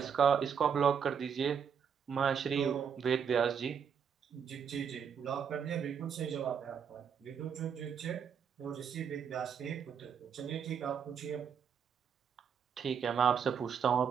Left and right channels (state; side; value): quieter; left; 7.3 dB